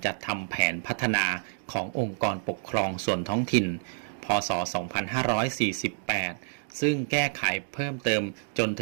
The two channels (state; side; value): silent; left; digital silence